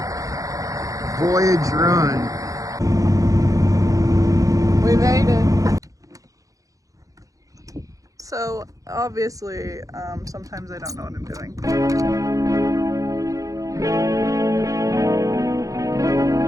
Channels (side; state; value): left; late; 0.16 ms